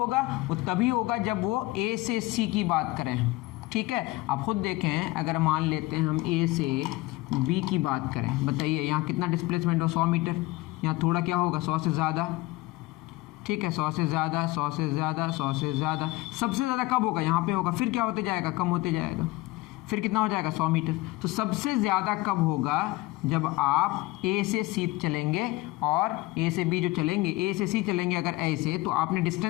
वो तभी होगा जब वो ए से सी की बात करें, ठीक है। आप खुद देखें, अगर मान लेते हैं हम ए से बी की बात करें, बताइए यहाँ कितना डिस्प्लेसमेंट हो, 100 मीटर। यहाँ थोड़ा क्या होगा, 100 से ज़्यादा, ठीक है, 100 से ज़्यादा, 100 से ज़्यादा, 100 से ज़्यादा। सबसे ज़्यादा कब होगा, यहाँ पे होगा। फिर क्या होते जाएगा, कम होते जाएगा। फिर कितना हो जाएगा, 100 मीटर। तो सबसे ज़्यादा कब होगा, जब आप ए से सी चलेंगे और ए से बी जो चलेंगे, ए से सी चलेंगे अगर ऐसे, तो आपने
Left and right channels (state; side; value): quieter; right; 20.0 dB